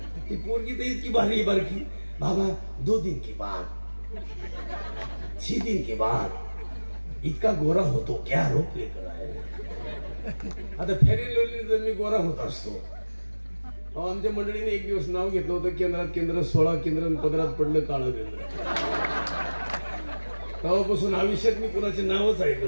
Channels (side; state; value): both; inverted; correlation -1.00